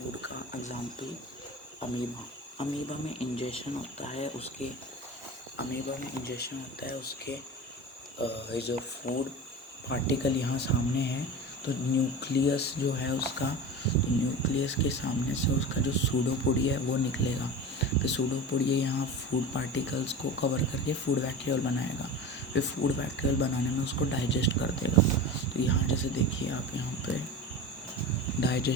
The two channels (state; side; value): normal; both; correlation 0.30